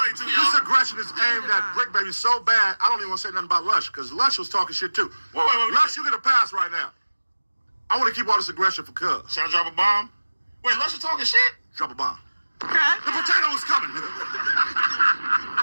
too, y'all. This aggression is aimed at Briccbaby so bad, I don't even want to say nothing about Lush, because Lush was talking shit, too. Wait. Lush, you get a pass right now. I want to keep all this aggression for Cuz. Should I drop a bomb? Wait, Lush is talking shit? Drop a bomb. Okay. The potato is coming, nigga.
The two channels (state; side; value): inverted; both; correlation -1.00